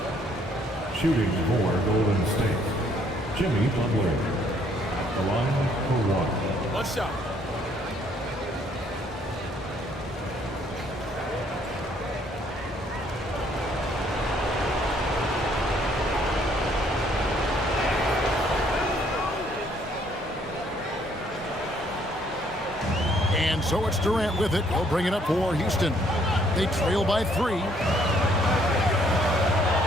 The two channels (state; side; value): normal; both; correlation 0.65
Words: Shooting for Golden State, Jimmy Butler at the line for 1. One shot. And so it's Durant with it. He'll bring it up for Houston. They trail by 3.